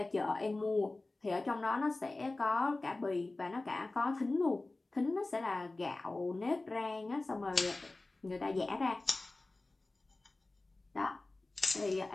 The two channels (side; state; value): right; quieter; 3.1 dB